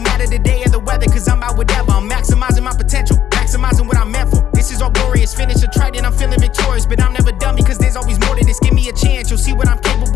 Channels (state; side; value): quieter; right; 10.7 dB